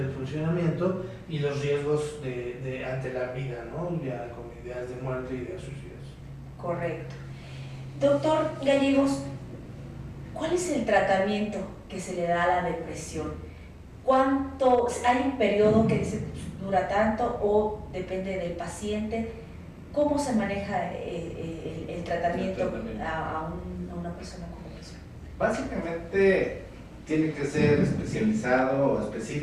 funcionamiento y los riesgos ante la vida, ¿no? Ya con ideas de muerte y ideas suicidas. Correcto. Doctor Gallegos, ¿cuál es el tratamiento que se le da a la depresión? ¿Cuánto? ¿Hay un periodo que dice dura tanto o depende del paciente? ¿Cómo se maneja el tratamiento a una persona con depresión? Básicamente tiene que ser especializado o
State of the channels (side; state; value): both; identical; correlation 1.00